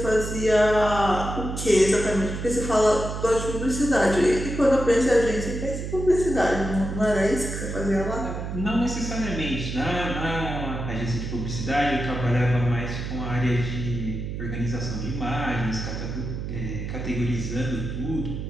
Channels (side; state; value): right; noise; hum, 5 dB below the sound